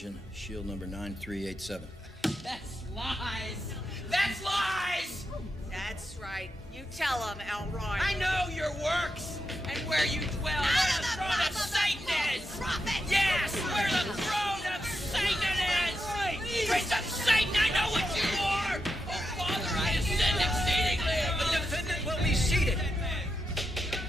shield number 9387. That's lies! That's lies! That's right. You tell him, Elroy. I know your works and where you dwell. Where the throne of Satan is! Yes, where the throne of Satan is! Prince of Satan, I know what you are! Oh, Father, I have sinned exceedingly! The defendant will be seated.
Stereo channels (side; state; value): both; normal; correlation 0.86